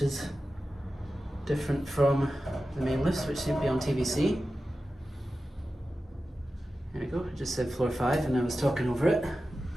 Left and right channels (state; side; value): normal; both; correlation 0.93